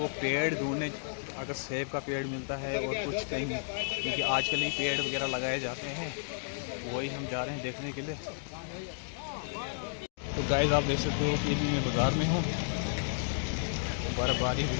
पेड़ ढूंढने, अगर सेब का पेड़ मिलता है और कुछ कहीं, क्योंकि आजकल ही पेड़ वगैरह लगाए जाते हैं, वही हम जा रहे हैं देखने के लिए। तो गाइस आप देख सकते हो कि मैं बाज़ार में हूँ। बर्फ़बारी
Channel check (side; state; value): right; silent; digital silence